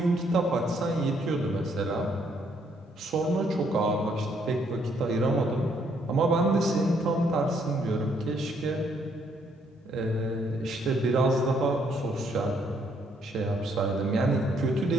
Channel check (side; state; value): both; normal; correlation 0.70